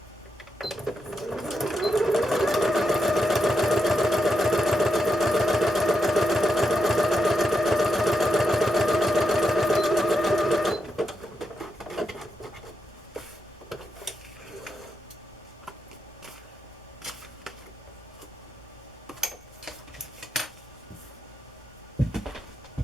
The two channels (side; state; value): both; normal; correlation 0.84